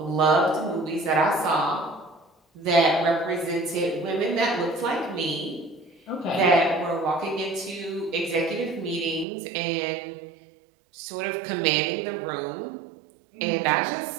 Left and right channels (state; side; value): drops out; left; at 9.2 s